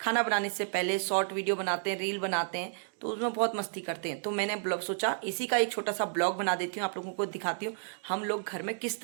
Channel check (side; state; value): left; silent; digital silence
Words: बनाने से पहले शॉर्ट वीडियो बनाते हैं, रील बनाते हैं, तो उसमें बहुत मस्ती करते हैं। तो मैंने ब्लॉग सोचा इसी का एक छोटा सा ब्लॉग बना देती हूँ, आप लोगों को दिखाती हूँ हम लोग घर में किस